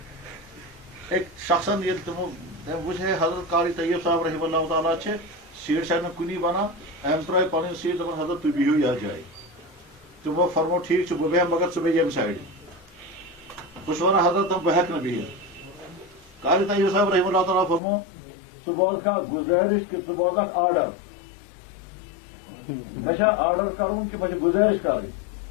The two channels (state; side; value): drops out; right; at 17.8 s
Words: أکۍ شخصن ییٚلہِ تِمو تٔمۍ وٕچھ ہے حضرت قاری طیب صاحب رحمہ اللہ تعالیٰ چھِ سیٹ چھنہٕ کُنی بنان أمۍ ترٛٲے پنٕنۍ سیٹ دپان حضرت تُہۍ بِہِو یتھ جایہِ تِمو فرمو ٹھیٖک چھُ بہٕ بیٚہمہٕ مگر ژٕ بیٚہہ ییٚمہِ سایڈٕ بہٕ چھُس ونان حضرت بہٕ ہٮ۪کہٕ نہٕ بِہِتھ قاری طیب صاحب رحمہ اللہ تعالیٰ فرمو ژٕ بوزکھا گُزٲرِش کہِ ژٕ بوزکھ آرڈر مےٚ چھا آرڈر کرُن کہِ مےٚ چھِ گُزٲرِش کرٕنۍ